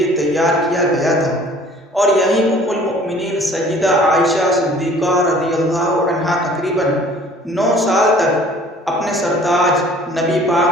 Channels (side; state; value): both; normal; correlation 0.52